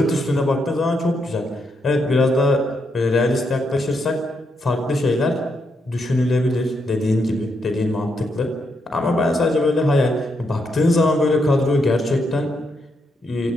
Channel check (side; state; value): both; normal; correlation 0.80